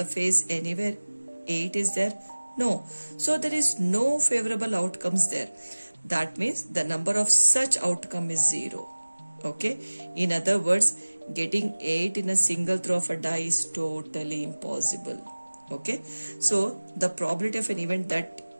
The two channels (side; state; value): both; inverted; correlation -1.00